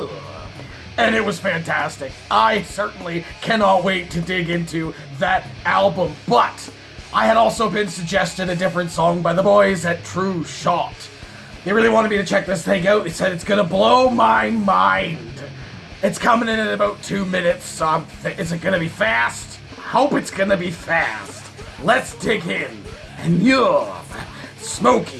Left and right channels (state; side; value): identical; both; correlation 1.00